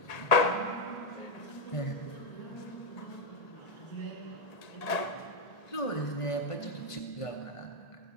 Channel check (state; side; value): late; right; 1.8 ms